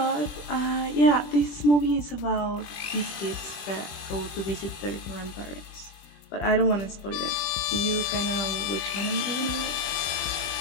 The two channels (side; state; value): right; late; 20 ms